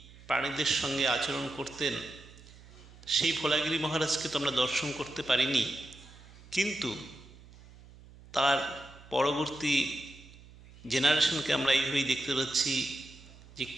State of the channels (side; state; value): right; noise; hum, 21 dB below the sound